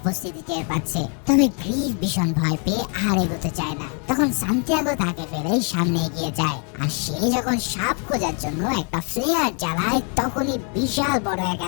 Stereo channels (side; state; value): right; quieter; 39.0 dB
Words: টের পাচ্ছে, তবে গ্রিফ ভীষণ ভয় পেয়ে আর এগোতে চায় না। তখন সান্তিয়াগো তাকে ফেলে সামনে এগিয়ে যায়, আর সে যখন সাপ খোঁজার জন্য একটা ফ্লেয়ার জ্বালায় তখনই বিশাল বড় এক